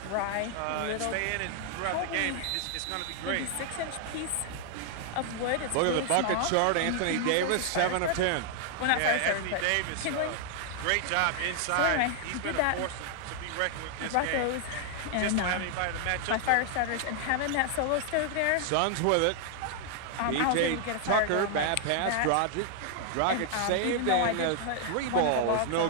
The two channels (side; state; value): both; different; correlation 0.00